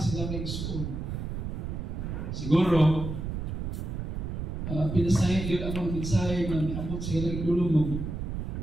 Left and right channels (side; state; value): right; noise; rumble, 4 dB below the sound